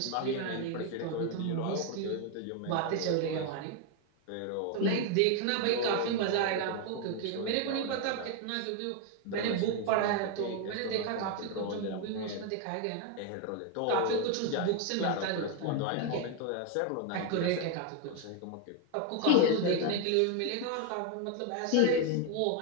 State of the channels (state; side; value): different; both; correlation 0.01